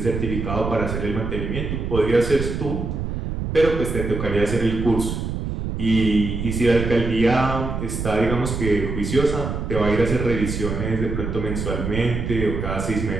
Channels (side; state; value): right; noise; rumble, 4 dB below the sound